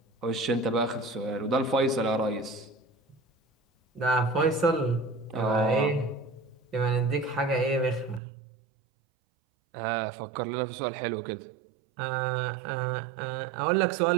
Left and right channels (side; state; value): left; drops out; at 8.2 s